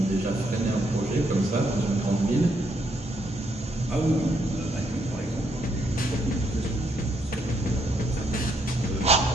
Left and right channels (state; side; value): normal; both; correlation 0.74